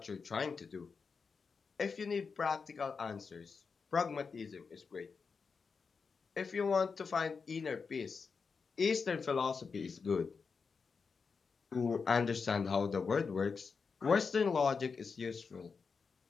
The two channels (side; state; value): right; quieter; 5.2 dB